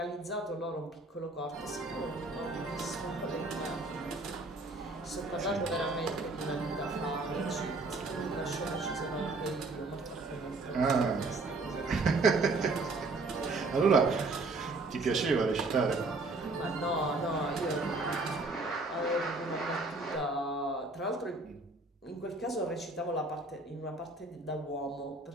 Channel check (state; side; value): quieter; left; 3.3 dB